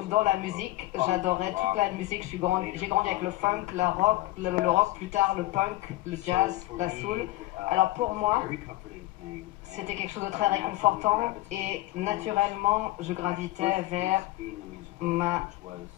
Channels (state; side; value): quieter; right; 18.1 dB